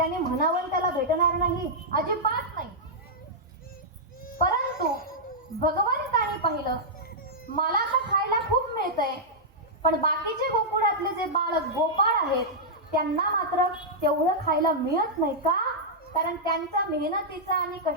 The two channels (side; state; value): both; normal; correlation -0.09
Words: म्हणावं त्याला भेटणार नाही? अजिबात नाही. परंतु भगवंताने पाहिलं मला तर खायला खूप मिळतंय, पण बाकीचे गोकुळातले जे बाळ गोपाळ आहेत त्यांना मात्र तेवढं खायला मिळत नाही का? कारण त्यांच्या मेहनतीचं आणि